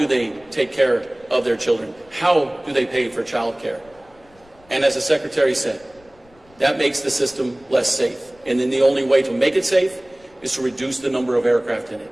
they take care of their children, how do they pay for child care. And as the Secretary said, that makes the system less safe. And then the only way to make it safe is to reduce the number of aircraft in it.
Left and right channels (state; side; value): noise; left; rumble, 29 dB below the sound